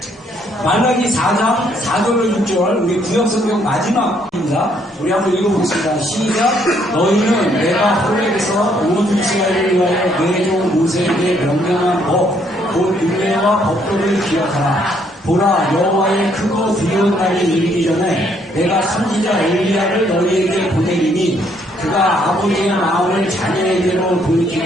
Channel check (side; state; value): both; normal; correlation 0.69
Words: 말라기 4장 4절로 6절 우리 구약성경 마지막입니다. 우리 한번 읽어보겠습니다. 시작. 너희는 내가 호렙에서 온 이스라엘을 위하여 내 종 모세에게 명령한 법 곧 율례와 법도를 기억하라. 보라, 여호와의 크고 두려운 날이 이르기 전에 내가 선지자 엘리야를 너희에게 보내리니 그가 아버지의 마음을 자녀에게로